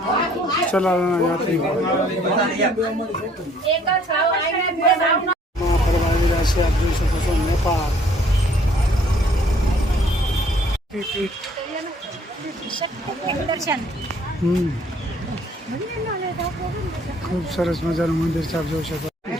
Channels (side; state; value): both; normal; correlation 0.60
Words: ચલાવવાના યાત્રિકો ફરવા આવી રહ્યા છે, આપ જોઈ શકો છો. નેપાળ ખૂબ સરસ મજાનું મંદિર છે, આપ જોઈ શકો.